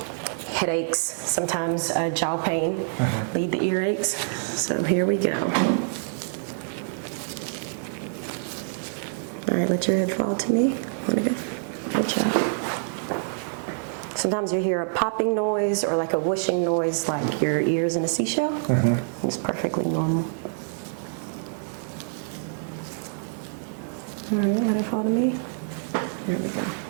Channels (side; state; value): left; silent; 56 dB below the other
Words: headaches, sometimes jaw pain, lead the earaches. So here we go. All right, let your head fall to me. Good job. Sometimes you hear a popping noise or like a whooshing noise, like your ears in a seashell. It's perfectly normal. All right, let it fall to me. There we go.